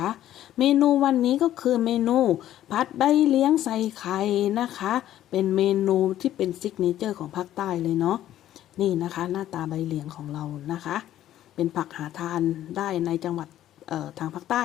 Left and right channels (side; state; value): right; quieter; 12.5 dB